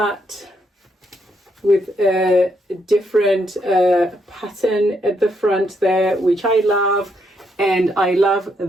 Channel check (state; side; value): normal; both; correlation 0.76